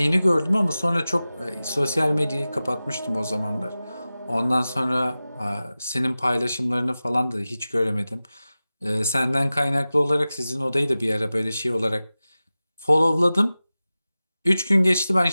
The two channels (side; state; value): both; inverted; correlation -0.96